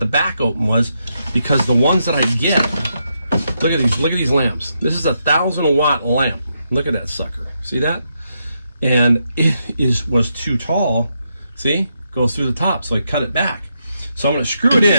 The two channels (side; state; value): both; inverted; correlation -0.81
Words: back open was because the ones that I get, look at these lamps. This is a 1,000-watt lamp. Look at that sucker. See that? And it was too tall. See? Goes through the top. So I cut it back. So I'm going to screw it